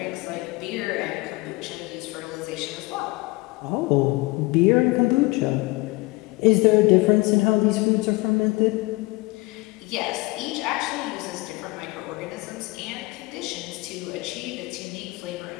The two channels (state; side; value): quieter; right; 23.2 dB